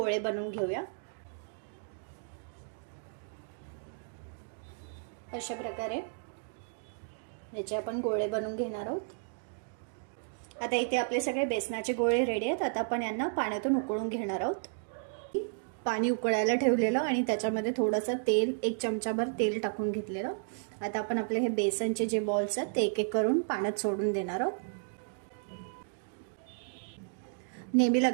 बनवून घेऊया. अशा प्रकारे याचे आपण गोळे बनवून घेणार आहोत. आता इथे आपले सगळे बेसनाचे गोळे रेडी आहेत. आता आपण यांना पाण्यातून उकळून घेणार आहोत. पाणी उकळायला ठेवलेलं आणि त्याच्यामध्ये थोडंसं तेल, 1 चमचाभर तेल टाकून घेतलेलं. आता आपण आपले हे बेसनचे जे बॉल्स आहेत ते एक एक करून पाण्यात सोडून देणार आहोत. नेहमी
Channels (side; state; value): left; silent; digital silence